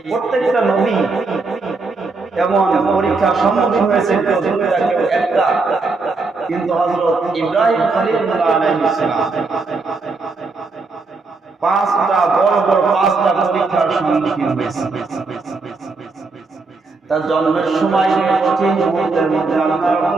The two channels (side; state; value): left; quieter; 3.9 dB